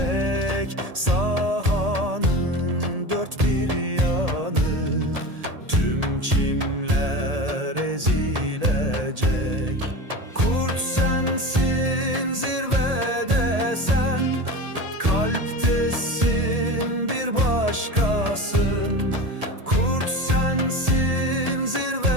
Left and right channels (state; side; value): late; left; 1.8 ms